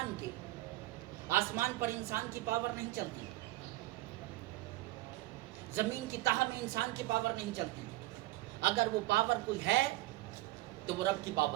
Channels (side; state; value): left; quieter; 18.3 dB